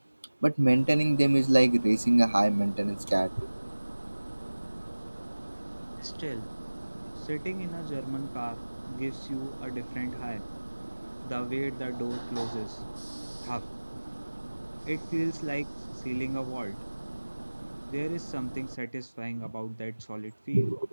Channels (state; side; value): inverted; both; correlation -1.00